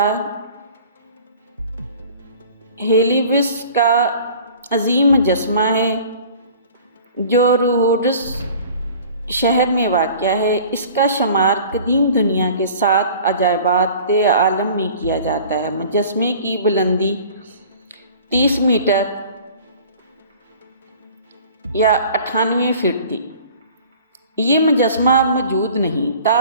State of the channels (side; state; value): both; inverted; correlation -0.46